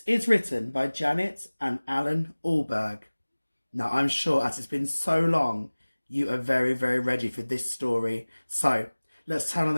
is written by Janet and Alan Allberg. Now, I'm sure as it's been so long, you are very, very ready for this story. So, let's turn on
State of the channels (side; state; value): both; inverted; correlation -1.00